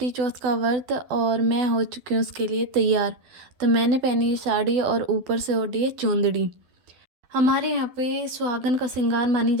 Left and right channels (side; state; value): left; late; 12 ms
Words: चौथ का व्रत और मैं हो चुकी हूँ उसके लिए तैयार। तो मैंने पहनी है साड़ी और ऊपर से ओढ़ी है चुंदड़ी। हमारे यहाँ पे सुहागन का श्रृंगार मानी